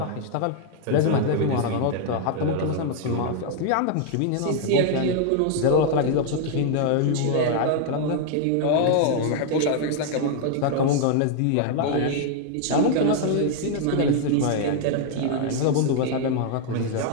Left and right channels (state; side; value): different; both; correlation 0.00